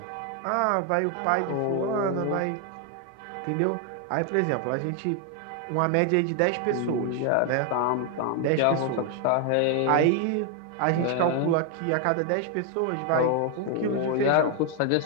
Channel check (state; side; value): different; both; correlation 0.00